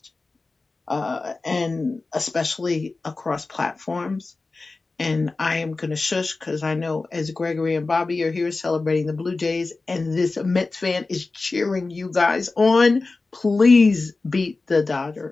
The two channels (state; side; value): quieter; right; 3.6 dB